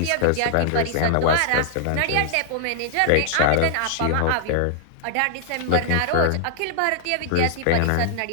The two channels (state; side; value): different; both; correlation -0.01